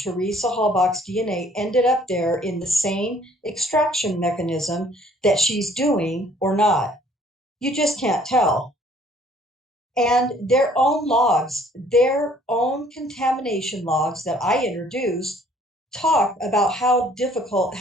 Halbach's DNA ended up there in the same extraction mechanism that she's doing or not. You just can't tell. And their own logs, their own contamination logs that I introduced, talk about how difficult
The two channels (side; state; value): both; normal; correlation 0.59